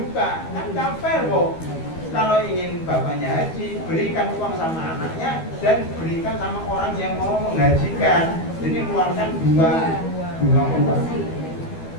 kan nggak fair kok. Kalau ingin bapaknya haji, berikan uang sama anaknya dan berikan sama orang yang mau menghajikan. Jadi keluarkan dua uang.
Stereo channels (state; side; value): late; right; 12 ms